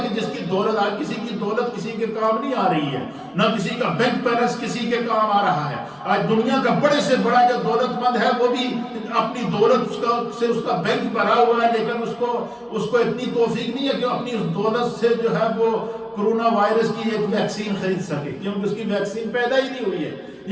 کہ جس کی دولت آج کسی کی دولت کسی کے کام نہیں آ رہی ہے، نہ کسی کا بینک بیلنس کسی کے کام آ رہا ہے۔ آج دنیا کا بڑے سے بڑا جو دولت مند ہے وہ بھی اپنی دولت سے اس کا بینک بھرا ہوا ہے، لیکن اس کو اتنی توفیق نہیں ہے کہ اپنی اس دولت سے جو ہے وہ کرونا وائرس کی ایک ویکسین خرید سکے، کیونکہ اس کی ویکسین پیدا ہی نہیں ہوئی ہے۔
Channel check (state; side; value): identical; both; correlation 1.00